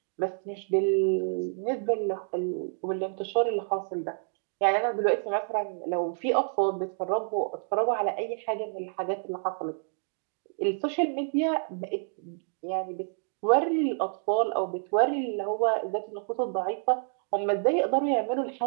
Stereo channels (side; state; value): left; silent; digital silence